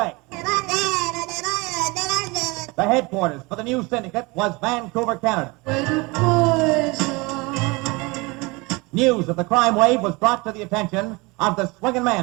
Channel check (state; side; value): quieter; left; 25.5 dB